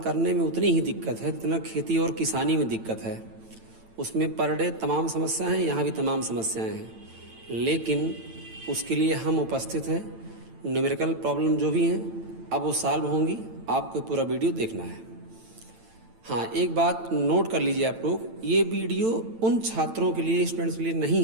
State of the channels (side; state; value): left; late; 9.0 ms